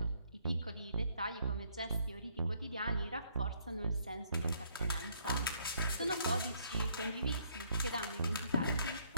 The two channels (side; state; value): both; inverted; correlation -0.68